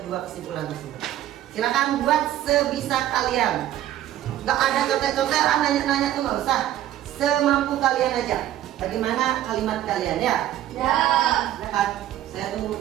dua kesimpulan tersebut. Silakan buat sebisa kalian. Gak ada contek-contekan, nanya-nanya tuh nggak usah. Semampu kalian aja. Bagaimana kalimat kalian ya? Ya. Silakan, saya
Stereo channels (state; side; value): quieter; left; 12.9 dB